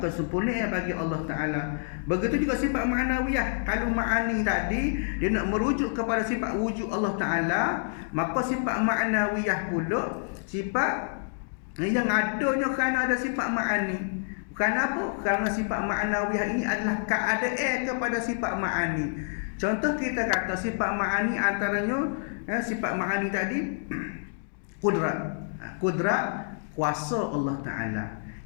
bagi Allah Ta'ala. Begitu juga sifat ma'nawiyah. Kalau ma'ani tadi, dia nak merujuk kepada sifat wujud Allah Ta'ala, maka sifat ma'nawiyah pula sifat yang adanya kerana ada sifat ma'ani. Kerana apa? Kerana sifat ma'nawiyah ini adalah keadaan kepada sifat ma'ani. Contoh kita kata sifat ma'ani antaranya, sifat ma'ani tadi kudrat. Kudrat, kuasa Allah Ta'ala.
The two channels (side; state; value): right; silent; digital silence